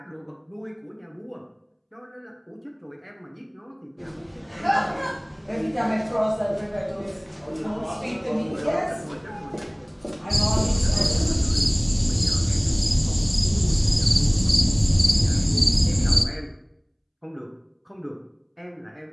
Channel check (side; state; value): both; identical; correlation 1.00